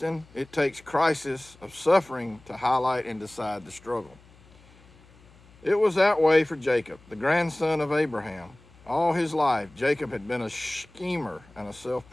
it takes crisis of suffering to highlight and decide the struggle. It was that way for Jacob, the grandson of Abraham. All his life, Jacob had been a schemer and a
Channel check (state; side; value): noise; left; hum, 26 dB below the sound